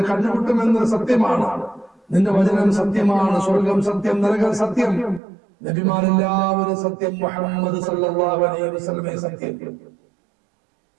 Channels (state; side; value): drops out; left; at 5.2 s